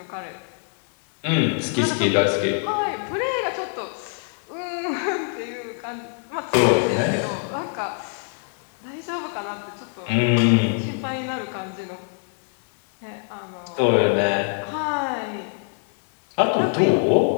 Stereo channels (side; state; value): right; silent; 55 dB below the other